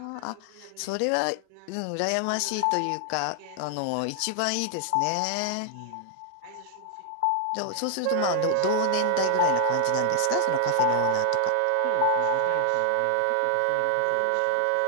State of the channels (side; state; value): both; different; correlation 0.00